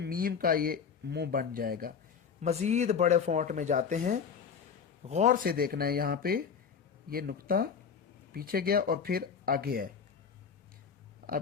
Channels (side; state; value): right; quieter; 6.5 dB